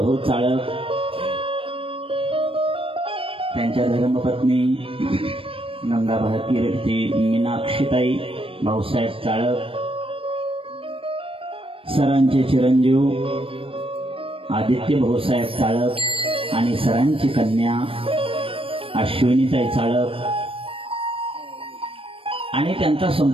चाळक, त्यांच्या धर्मपत्नी गंगाभारती मीनाक्षीताई भाऊसाहेब चाळक, सरांचे चिरंजीव आदित्य भाऊसाहेब चाळक आणि सरांची कन्या अश्विनीताई चाळक आणि त्यांचा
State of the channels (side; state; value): left; late; 0.26 ms